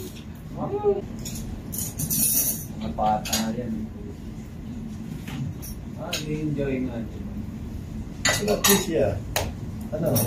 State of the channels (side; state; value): both; identical; correlation 1.00